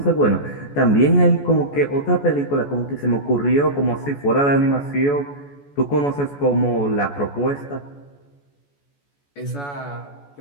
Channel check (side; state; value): right; late; 14 ms